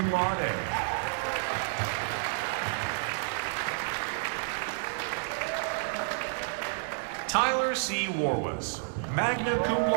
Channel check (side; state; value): left; silent; 58 dB below the other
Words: laude. Tyler C. Warwas, magna cum